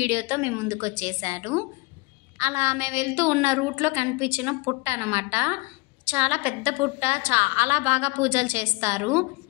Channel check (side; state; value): right; quieter; 25.8 dB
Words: మేము ముందుకు వచ్చేసాను. అలా మేము వెళ్తూ ఉన్న రూట్లో కనిపించిన పుట్ట అనమాట. చాలా పెద్ద పుట్ట, చాలా బాగా పూజలు చేస్తారు.